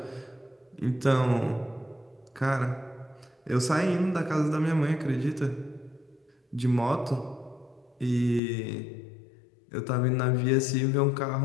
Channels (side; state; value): right; drops out; at 8.4 s